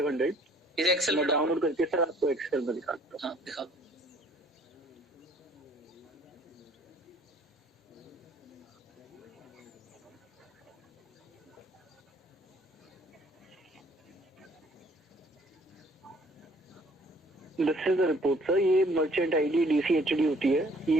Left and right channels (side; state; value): both; normal; correlation 0.59